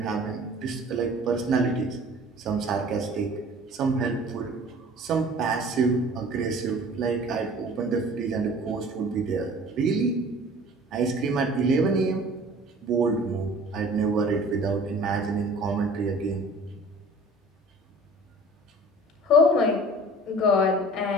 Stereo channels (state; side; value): normal; both; correlation 0.46